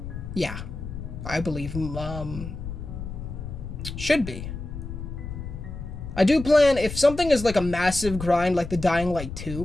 Yeah, I believe, should be. I do plan, if something is like a massive grind, like the Dying Light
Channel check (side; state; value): left; noise; rumble, 8 dB below the sound